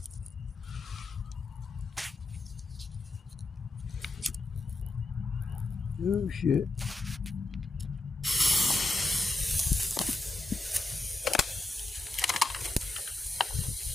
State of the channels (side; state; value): right; quieter; 3.1 dB